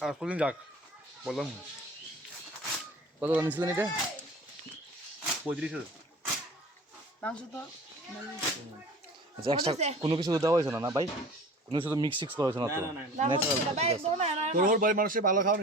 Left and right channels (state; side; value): normal; both; correlation 0.42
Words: আর কোনদিন যাক বললাম কত দাম নিয়েছিলেন এটা 35 মাংস তো আচ্ছা এক্সট্রা কোনো কিছু দেওয়া হয়েছে না ভাই কোনো কিছু তো মিক্স সিক্স করা হয়েছে না তো তোর হোর বাড়ির মানুষের ভালো খাওয়া